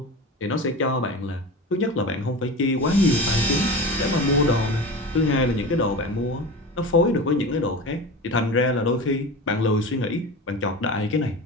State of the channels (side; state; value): both; normal; correlation 0.29